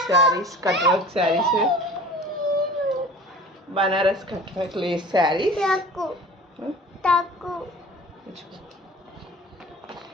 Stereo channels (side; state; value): both; normal; correlation 0.42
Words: saris, cut work saris, Banaras cut work lace saris.